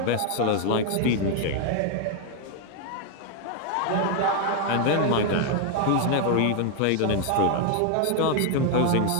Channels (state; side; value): different; both; correlation 0.00